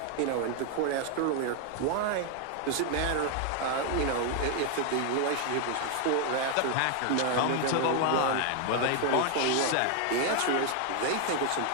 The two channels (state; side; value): different; both; correlation 0.00